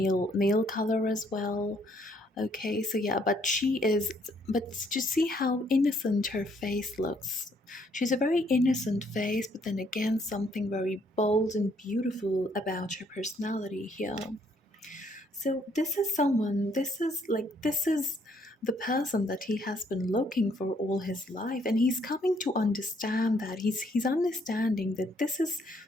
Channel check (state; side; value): normal; both; correlation 0.68